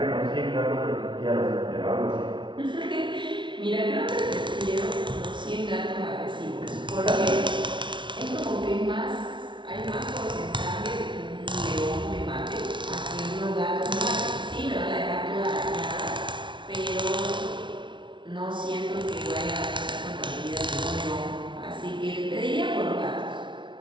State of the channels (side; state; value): left; late; 0.24 ms